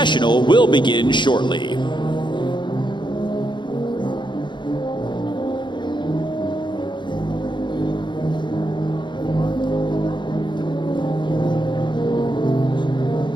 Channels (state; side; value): late; right; 0.23 ms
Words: will begin shortly.